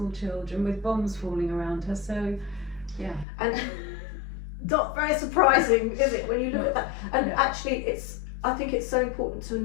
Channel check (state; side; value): drops out; right; at 3.2 s